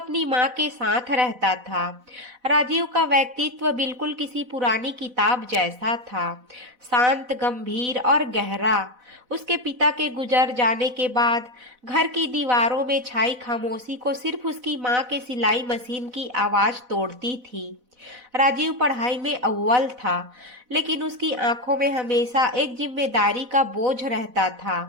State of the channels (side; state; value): left; late; 4.0 ms